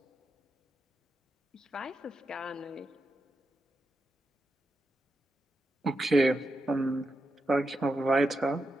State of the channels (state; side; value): normal; both; correlation 0.87